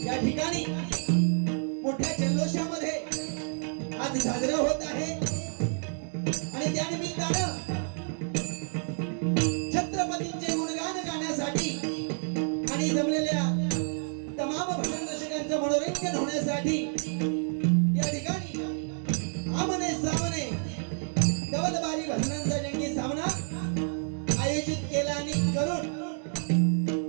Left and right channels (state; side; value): silent; left; 58 dB below the other